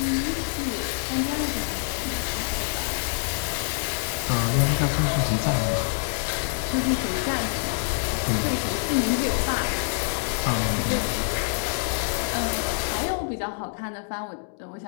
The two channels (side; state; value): right; silent; digital silence